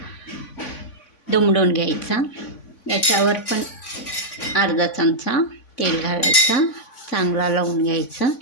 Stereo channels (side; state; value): right; late; 3.5 ms